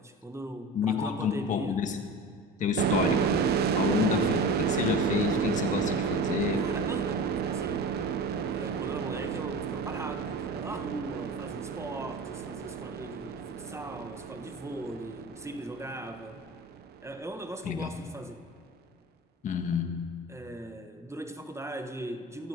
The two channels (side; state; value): both; normal; correlation 0.32